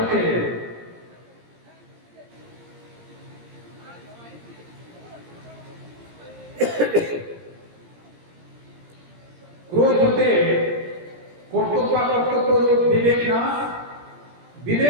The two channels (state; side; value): late; left; 17 ms